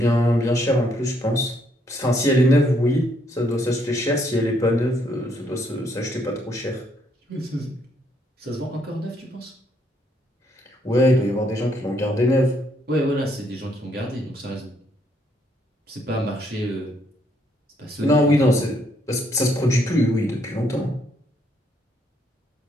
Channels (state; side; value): normal; both; correlation 0.71